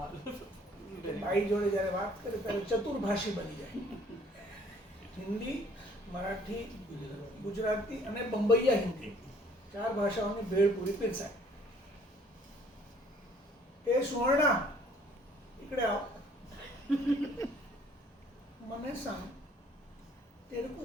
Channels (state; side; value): normal; both; correlation 0.59